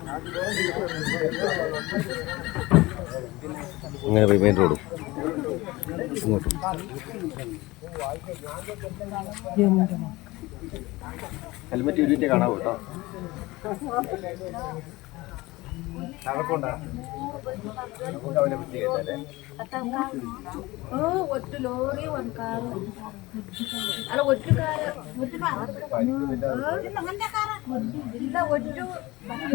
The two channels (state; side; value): quieter; right; 20.6 dB